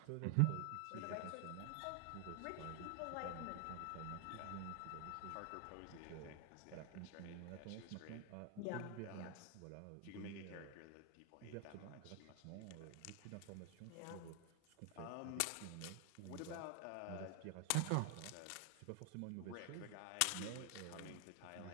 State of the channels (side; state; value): both; different; correlation 0.00